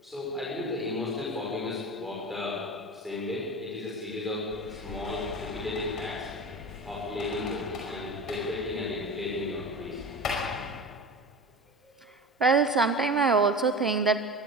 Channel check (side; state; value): both; normal; correlation 0.30